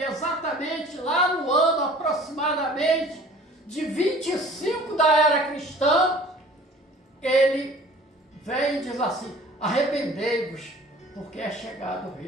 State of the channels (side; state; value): both; normal; correlation 0.48